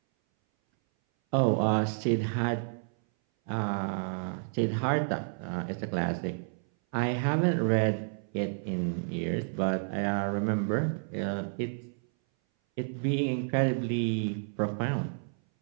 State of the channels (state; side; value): silent; left; 58 dB below the other